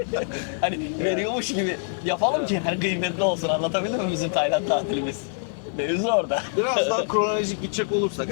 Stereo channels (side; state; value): right; silent; digital silence